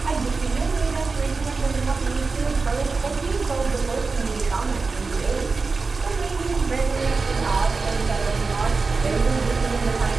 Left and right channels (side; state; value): left; quieter; 4.2 dB